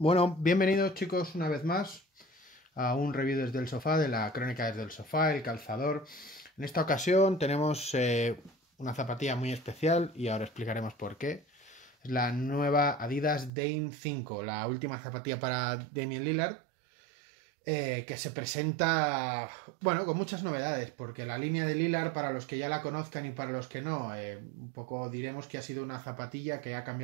Bueno, bienvenidos chicos una vez más a un review desde el sofá de la crónica desde el sofá, el calzador. En esta ocasión tenemos una zapatilla muy especial y ahora explicaremos por qué. Es la nueva Adidas Dame 5, la última zapatilla para Damian Lillard, que se presenta, bueno, con muchas novedades, porque la línea de Lillard, para los que ya la conozcan y para los que no, un poco diremos que ha sido una zapatilla que ha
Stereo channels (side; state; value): left; drops out; at 13.5 s